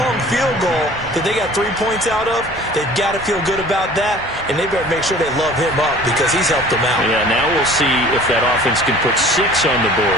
field goal that they got 3 points out of. They've got to feel good about that, and they better make sure they love him up because he's helped them out. Yeah, now we'll see if that offense can put 6 on the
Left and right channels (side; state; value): both; normal; correlation 0.47